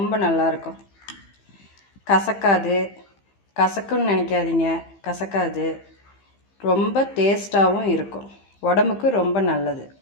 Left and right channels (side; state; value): right; late; 15 ms